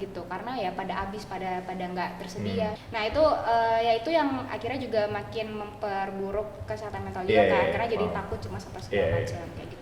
karena ya pada habis, pada nggak tersedia. Nah itu ya itu yang akhirnya juga makin memperburuk kesehatan mental juga kan, karena jadi takut cuma apa segala macam kayak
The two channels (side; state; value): both; identical; correlation 1.00